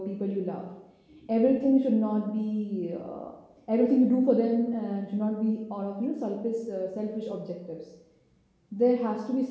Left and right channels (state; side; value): identical; both; correlation 1.00